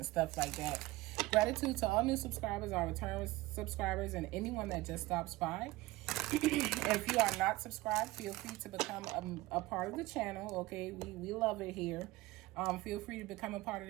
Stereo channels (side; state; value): left; quieter; 19.3 dB